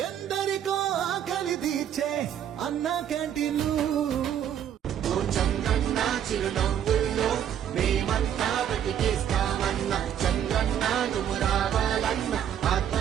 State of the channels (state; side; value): quieter; left; 9.7 dB